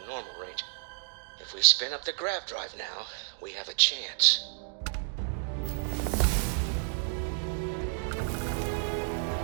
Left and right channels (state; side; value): silent; left; digital silence